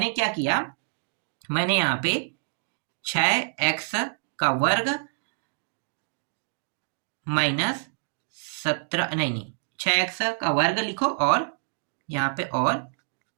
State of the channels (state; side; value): silent; left; digital silence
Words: क्या किया, मैंने यहाँ पे 6x का वर्ग माइनस 17, नहीं 6x का वर्ग लिखो, और यहाँ पे और